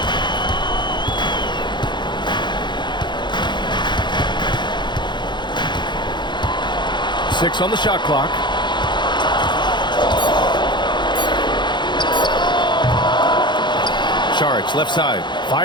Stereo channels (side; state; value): right; late; 0.22 ms